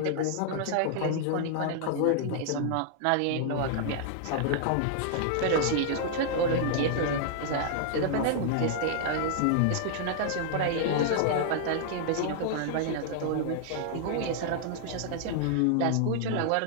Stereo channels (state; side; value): different; both; correlation -0.01